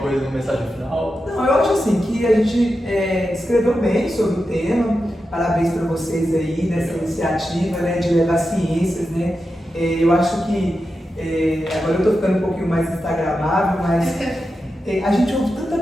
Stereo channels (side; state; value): both; normal; correlation 0.90